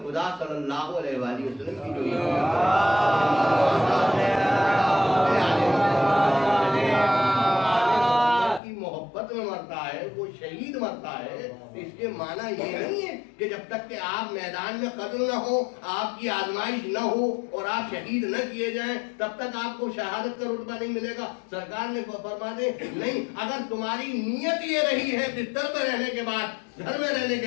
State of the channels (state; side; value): drops out; right; at 8.6 s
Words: خدا صلی اللہ علیہ وآلہ وسلم کی جو محبت میں مرتا ہے وہ شہید مرتا ہے، اس کے معنی یہ نہیں ہے کہ جب تک کہ آپ میدان میں قتل نہ ہو، آپ کی آزمائش نہ ہو اور آپ شہید نہ کیے جائیں تب تک آپ کو شہادت کا رتبہ نہیں ملے گا۔ سرکار نے فرما دے نہیں، اگر تمہاری نیت یہ رہی ہے بستر میں رہنے کے بعد، گھر میں رہنے